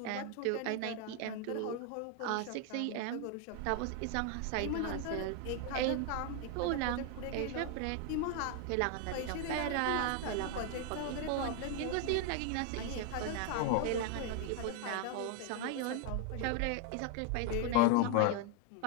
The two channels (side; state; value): both; different; correlation 0.01